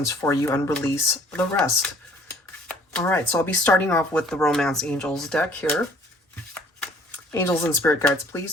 for you and release the rest. All right, so I'll be starting off with the Romance Angels deck here. Angels and spirit guides,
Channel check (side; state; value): both; normal; correlation 0.56